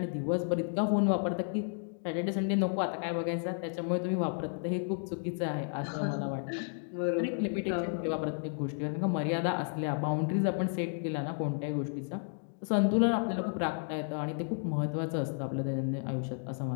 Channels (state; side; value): silent; right; 56 dB below the other